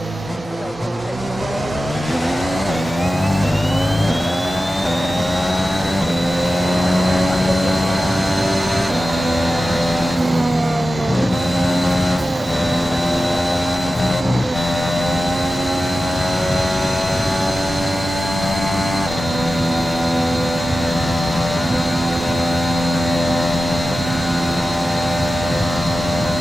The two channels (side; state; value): both; normal; correlation 0.94